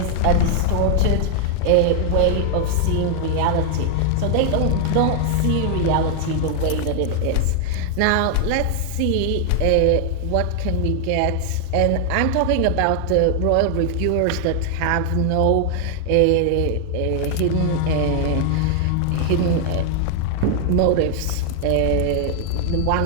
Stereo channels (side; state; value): both; different; correlation 0.00